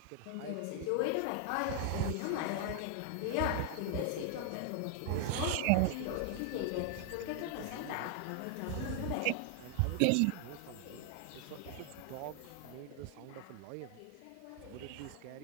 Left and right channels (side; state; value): both; different; correlation 0.00